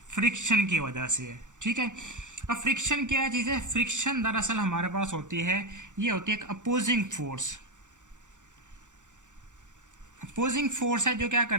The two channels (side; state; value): left; late; 0.85 ms